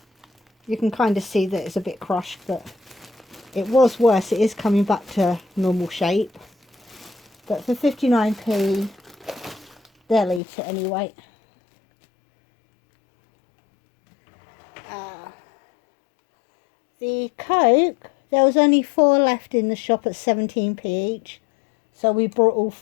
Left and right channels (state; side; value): drops out; right; at 10.4 s